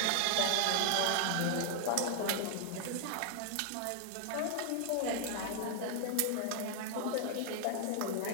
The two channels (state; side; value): different; both; correlation -0.01